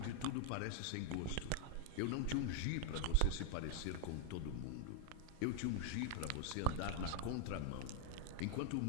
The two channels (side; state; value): both; different; correlation 0.00